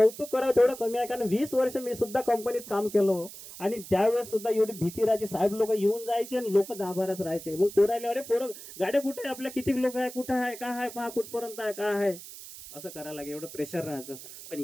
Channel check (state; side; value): noise; right; hiss, 14 dB below the sound